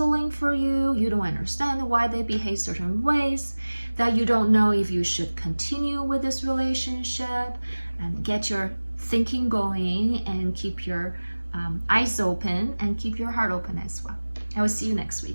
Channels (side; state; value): both; inverted; correlation -1.00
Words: for you. You don't understand why they behave certain ways, that you don't know if you should continue with this relationship, and get your thinking going and keep your eyes open and keep your heart open as well. I will see you next